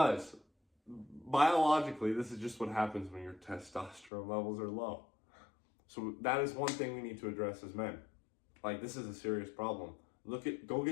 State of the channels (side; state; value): right; drops out; at 4.1 s